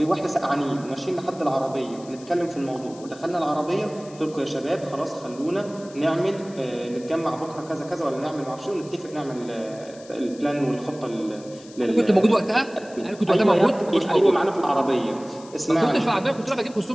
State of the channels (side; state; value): left; noise; hiss, 22 dB below the sound